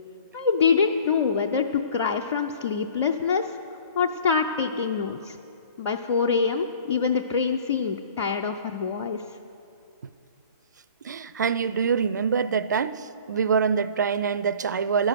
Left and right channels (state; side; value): inverted; both; correlation -0.47